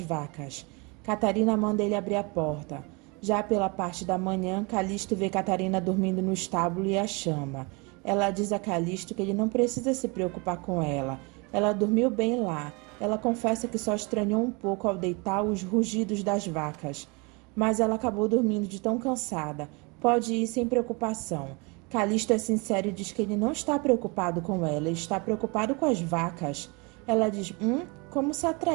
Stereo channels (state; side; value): quieter; left; 29.2 dB